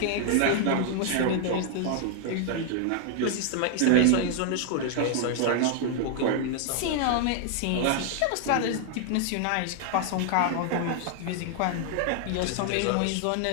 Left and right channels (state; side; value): different; both; correlation 0.00